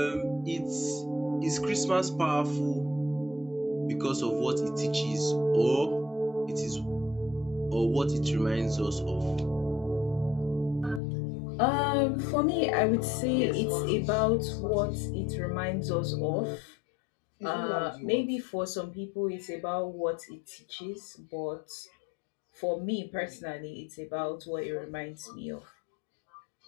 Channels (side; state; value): right; drops out; at 11.0 s